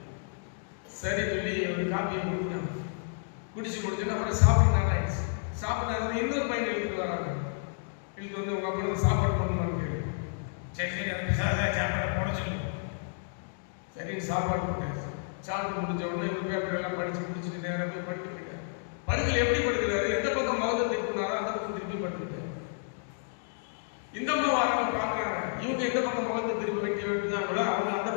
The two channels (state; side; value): silent; right; digital silence